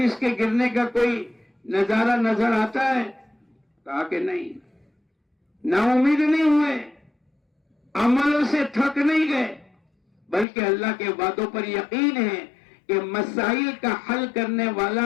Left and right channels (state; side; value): drops out; right; at 10.5 s